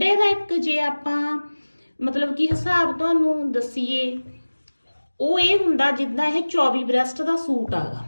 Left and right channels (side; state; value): both; inverted; correlation -1.00